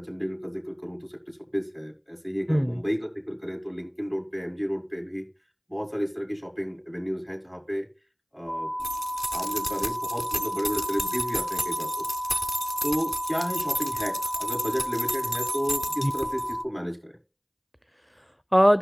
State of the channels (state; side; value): identical; both; correlation 1.00